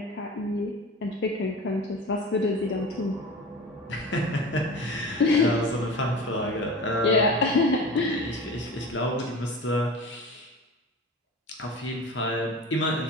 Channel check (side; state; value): both; normal; correlation 0.34